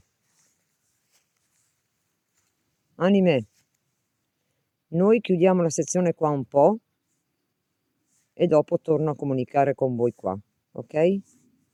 Anime, noi chiudiamo la sezione qua un po' e dopo torno a comunicare con voi qua, ok?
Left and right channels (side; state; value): both; identical; correlation 1.00